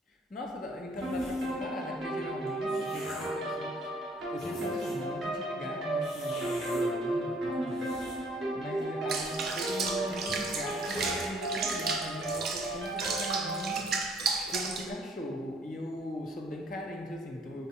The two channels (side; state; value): both; normal; correlation 0.61